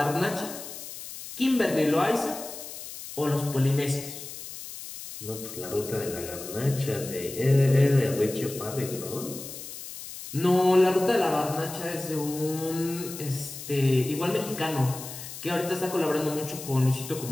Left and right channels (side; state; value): left; noise; hiss, 11 dB below the sound